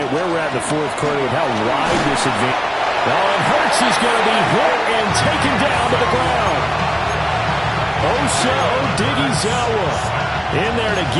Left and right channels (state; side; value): identical; both; correlation 1.00